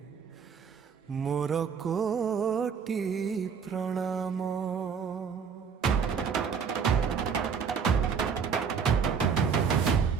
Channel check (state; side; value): quieter; left; 6.4 dB